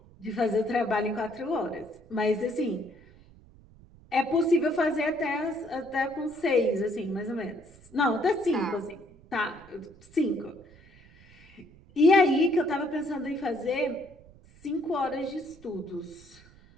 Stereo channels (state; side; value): noise; right; rumble, 24 dB below the sound